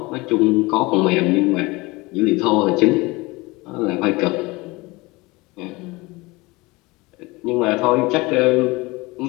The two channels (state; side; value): quieter; right; 23.1 dB